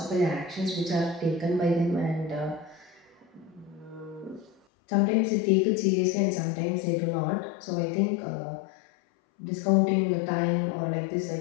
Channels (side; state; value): right; drops out; at 4.5 s